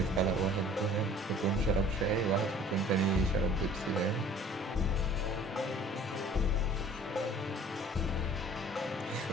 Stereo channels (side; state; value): both; normal; correlation 0.50